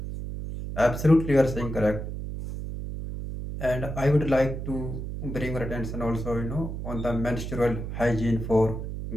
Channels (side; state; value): right; noise; hum, 6 dB below the sound